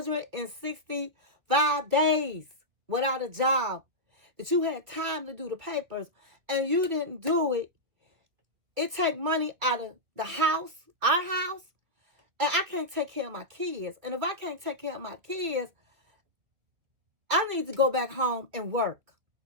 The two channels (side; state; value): left; late; 2.4 ms